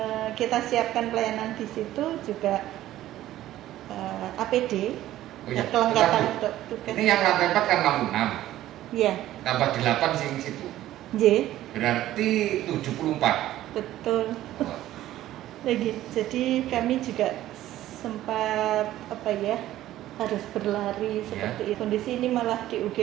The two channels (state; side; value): quieter; left; 14.0 dB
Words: kita siapkan pelayanan di situ juga APD, kelengkapan untuk tugas. Ini yang lantai 4 kan 66. Iya. Tambah 8 sing situ. Berarti 74. Betul. Lagi. Jadi kami juga sempat harus berlari seperti itu. Kondisi ini malah di